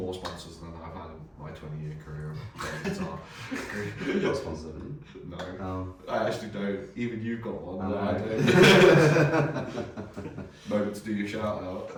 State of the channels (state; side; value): identical; both; correlation 1.00